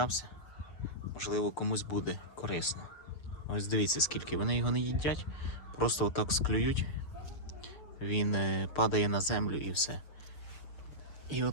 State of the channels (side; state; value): right; late; 6.8 ms